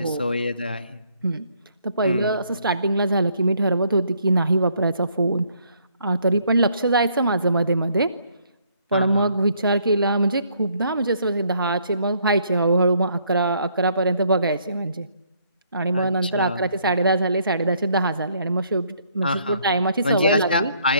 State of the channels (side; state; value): both; inverted; correlation -0.67